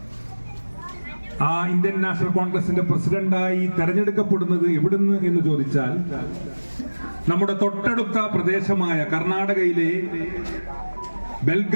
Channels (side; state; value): both; inverted; correlation -1.00